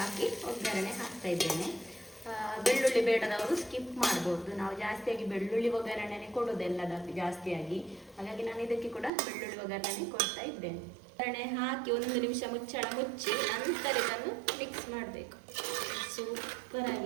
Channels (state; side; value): drops out; left; at 9.1 s